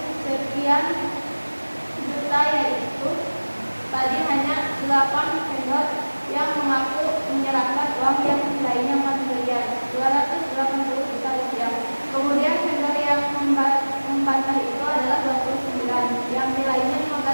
sekian juta, yaitu tadi hanya 8 vendor yang mengaku menyerahkan uang yang nilainya 4 miliar 280 juta rupiah. Kemudian vendor yang membantah itu adalah 29 yang nilainya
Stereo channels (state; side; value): inverted; both; correlation -1.00